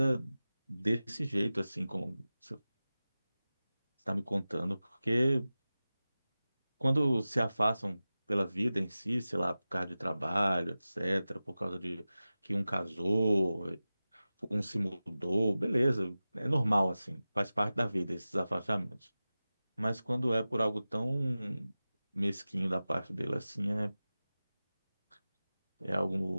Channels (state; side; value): inverted; both; correlation -0.96